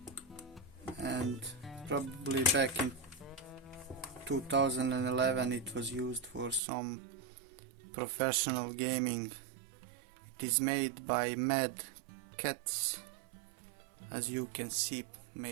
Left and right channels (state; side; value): drops out; left; at 6.6 s